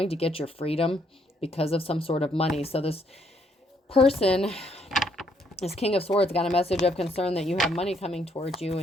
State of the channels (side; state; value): both; normal; correlation 0.71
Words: to get your freedom because of some sort of money. So this person This King of Swords got a message of concern that you have money coming towards you